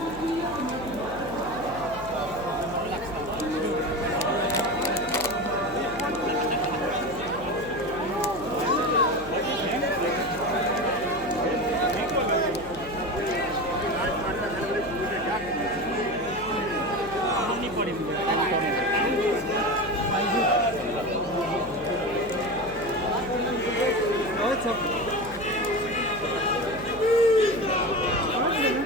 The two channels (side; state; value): left; noise; hum, 16 dB below the sound